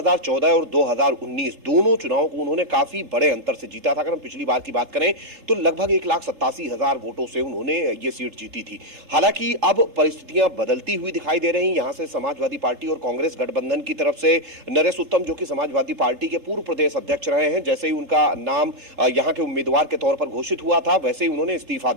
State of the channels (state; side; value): late; left; 3.7 ms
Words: और 2019 दोनों चुनावों को उन्होंने काफी बड़े अंतर से जीता था। अगर हम पिछली बार की बात करें तो लगभग 1,87,000 वोटों से उन्होंने ये सीट जीती थी। हालांकि अब परिस्थितियां बदलती हुई दिखाई दे रही। यहां से समाजवादी पार्टी और कांग्रेस गठबंधन की तरफ से नरेश उत्तम, जो कि समाजवादी पार्टी के पूर्व प्रदेश अध्यक्ष रहे हैं, जैसे ही उनका नाम यहाँ के उम्मीदवार के तौर पर घोषित हुआ था वैसे ही उन्होंने इस्तीफा